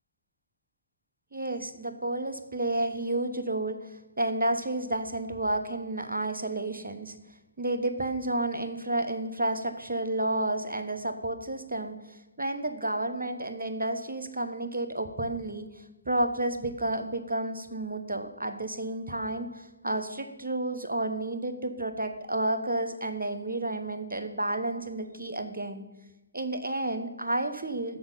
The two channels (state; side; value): inverted; both; correlation -0.65